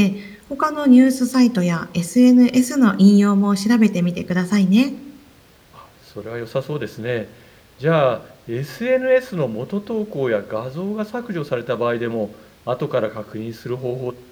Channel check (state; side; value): identical; both; correlation 1.00